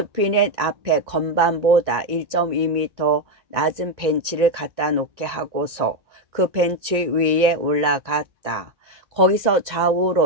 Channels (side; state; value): left; late; 1.9 ms